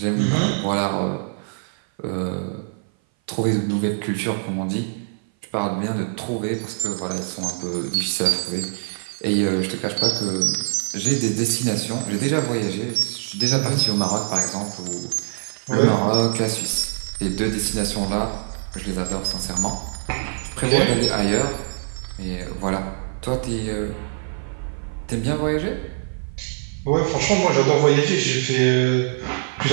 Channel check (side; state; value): left; silent; 57 dB below the other